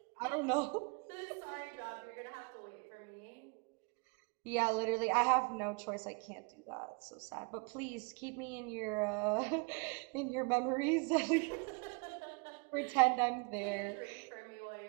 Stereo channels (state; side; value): quieter; left; 33.1 dB